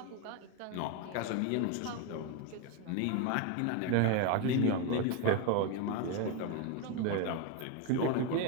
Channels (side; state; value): both; different; correlation 0.02